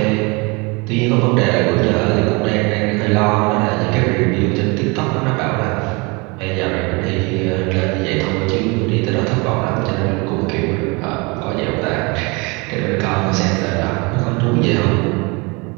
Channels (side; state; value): left; quieter; 28.1 dB